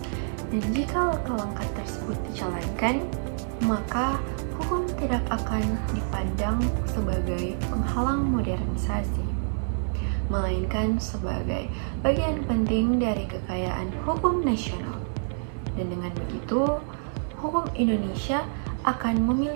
Dan jika langkah-langkah tersebut dijalankan, maka hukum tidak akan dipandang sebagai penghalang modernisasi, melainkan sebagai bagian penting dari kekayaan hukum nasional. Dan dengan begitu, hukum Indonesia akan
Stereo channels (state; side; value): silent; left; digital silence